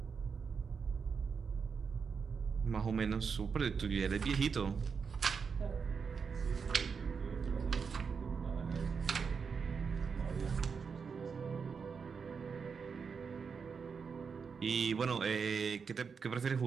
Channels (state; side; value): quieter; left; 5.8 dB